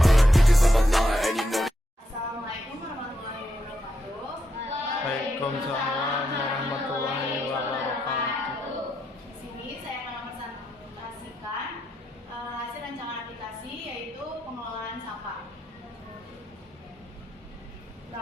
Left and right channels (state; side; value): normal; both; correlation 0.82